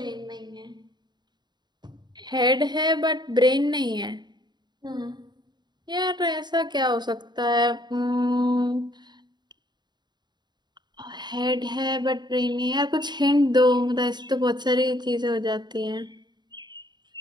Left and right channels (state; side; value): late; left; 0.21 ms